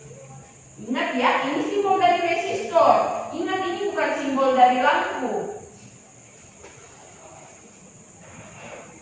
ingat ya, ini simbol dari resistor. Ingat ini bukan simbol dari lampu.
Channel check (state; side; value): identical; both; correlation 1.00